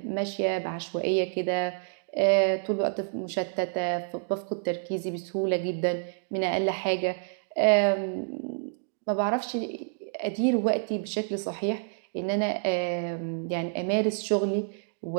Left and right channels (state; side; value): silent; left; digital silence